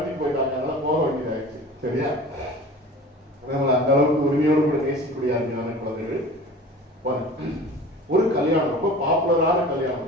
போயிட்டாங்க. அதனால போக வேண்டியதாச்சு. சரியா? அந்த அளவுக்கு உரிமையோடு கூட நேசிக்கக்கூடிய அருமையான குழந்தைகள். ஒரு கல்யாணம், ரொம்ப பாப்புலரான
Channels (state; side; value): normal; both; correlation 0.40